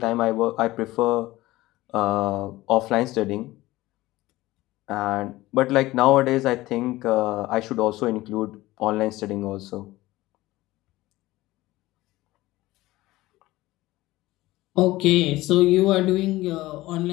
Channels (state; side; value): quieter; right; 18.0 dB